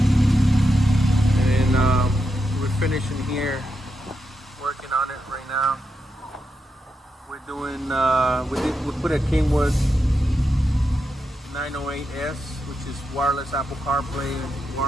And we're finishing here, working on it right now. We're doing, we put a Kenwood 908S, which is wireless Apple CarPlay,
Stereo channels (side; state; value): both; normal; correlation 0.86